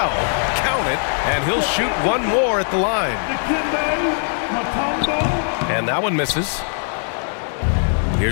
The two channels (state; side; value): silent; right; 66 dB below the other